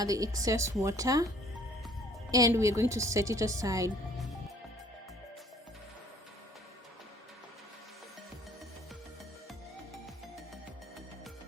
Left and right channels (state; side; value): normal; both; correlation 0.57